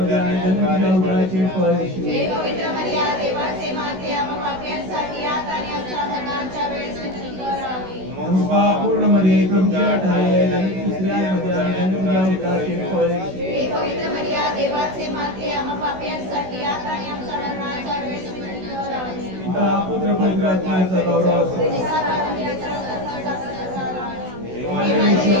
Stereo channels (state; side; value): late; left; 16 ms